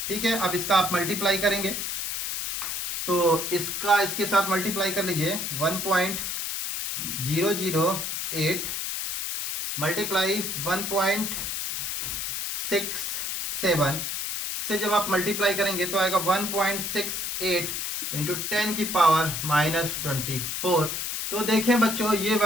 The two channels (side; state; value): left; noise; hiss, 3 dB below the sound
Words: ठीक है। अब इसका आप मल्टीप्लाई करेंगे तो इसका इसके साथ मल्टीप्लाई कर लीजिए, 1.67 008 मल्टीप्लाई 1.67 से जब आप मल्टीप्लाई करेंगे तो आएगा 1.68 इंटू 10 की पावर -24। तो देखें बच्चों, ये